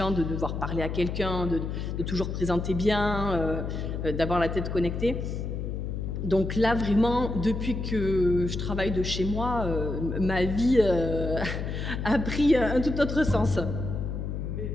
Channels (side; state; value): left; noise; hum, 4 dB below the sound